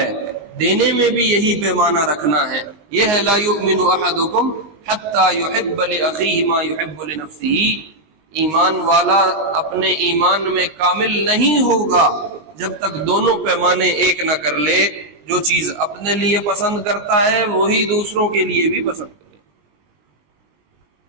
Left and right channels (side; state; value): left; late; 20 ms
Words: دینے میں بھی یہی پیمانہ رکھنا ہے. یہ ہے لا یؤمن احدکم حتی یحب لاخیہ ما یحب لنفسہ. ایمان والا اپنے ایمان میں کامل نہیں ہوگا جب تک دونوں پیمانے ایک نہ کر لے. جو چیز اپنے لیے پسند کرتا ہے وہی دوسروں کے لیے بھی پسند کرے.